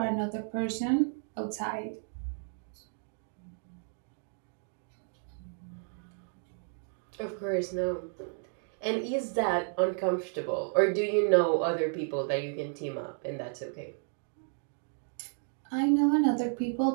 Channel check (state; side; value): silent; left; 56 dB below the other